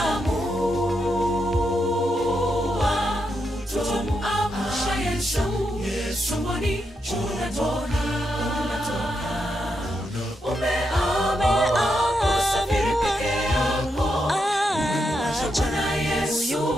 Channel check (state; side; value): normal; both; correlation 0.83